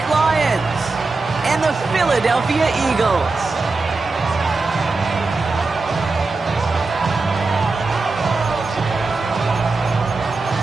Lions and the Philadelphia Eagles.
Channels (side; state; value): left; quieter; 3.7 dB